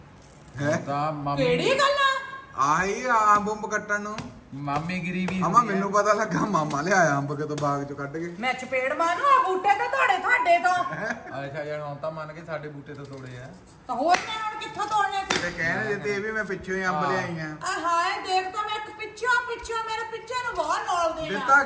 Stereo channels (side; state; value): both; identical; correlation 1.00